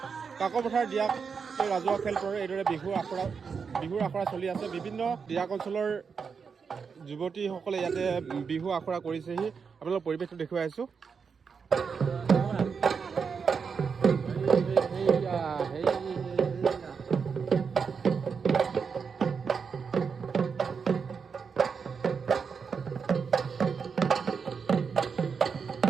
কাকপথাৰ ডিয়াক ৰাজহুৱা খেলপথাৰত এইদৰে বিহুৰ আখৰা চলি আছে। বিভিন্ন ডিয়াক অঞ্চলৰ যুৱতীসকলে ইয়াতে বিহু আখৰা কৰিছেহি। আপোনালোকৰ পৰিৱেশটো দেখুৱাই আছো।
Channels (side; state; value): left; quieter; 5.9 dB